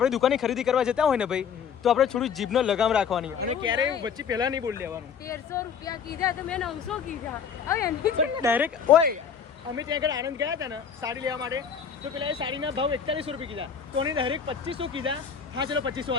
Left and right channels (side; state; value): right; quieter; 7.0 dB